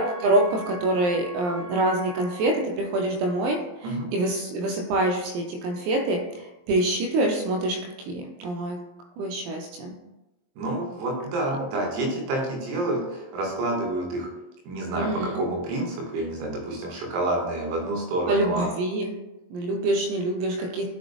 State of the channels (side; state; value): left; late; 23 ms